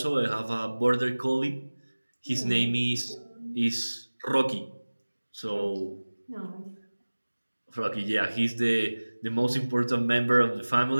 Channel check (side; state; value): both; inverted; correlation -1.00